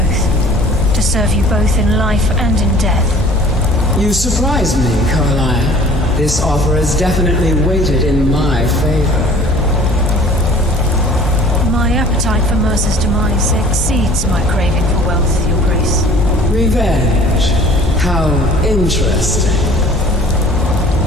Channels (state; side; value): normal; both; correlation 0.50